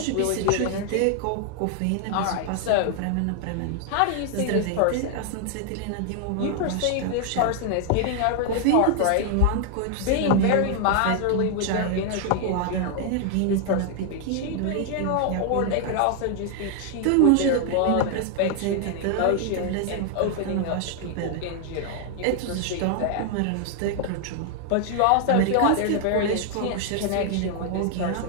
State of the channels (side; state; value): both; different; correlation 0.00